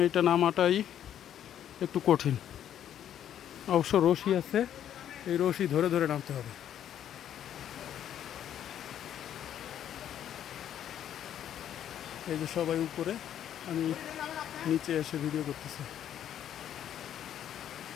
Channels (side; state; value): right; quieter; 10.3 dB